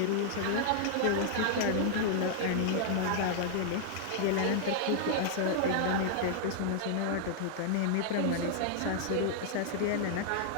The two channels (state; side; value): different; both; correlation -0.01